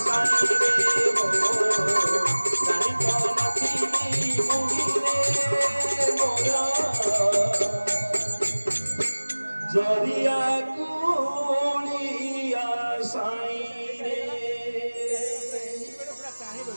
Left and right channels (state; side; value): inverted; both; correlation -1.00